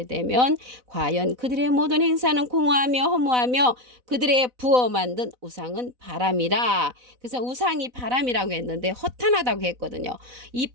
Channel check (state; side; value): late; left; 4.0 ms